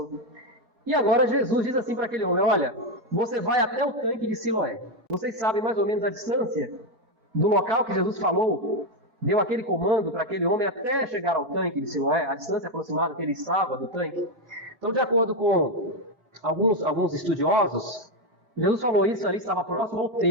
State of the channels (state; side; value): late; left; 4.5 ms